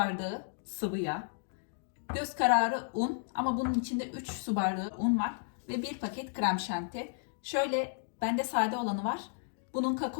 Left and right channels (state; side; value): silent; right; digital silence